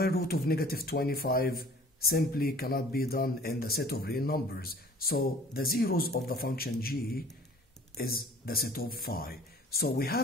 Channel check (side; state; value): both; normal; correlation 0.50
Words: root of negative 25 simply cannot be done in the set of real numbers. So the zeros of the function g is the set of phi. So we